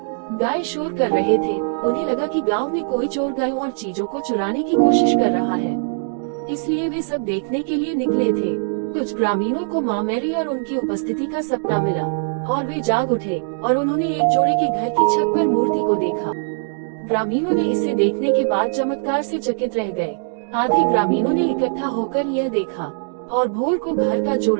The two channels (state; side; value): silent; left; digital silence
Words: गाय शोर कर रहे थे। उन्हें लगा कि गांव में कोई चोर गायों और चीजों को चुराने की कोशिश कर रहा है, इसलिए वे सब देखने के लिए निकले थे। कुछ ग्रामीणों को माँ मैरी और उनकी उपस्थिति का सपना मिला और वे जाग उठे और उन्होंने एक जोड़े के घर की छत पर मूर्ति को देखा। ग्रामीणों ने इसे देखने के बाद चमत्कार से चकित रह गए। आधे ग्रामीणों ने इकट्ठा होकर यह देखा और भोर को घर का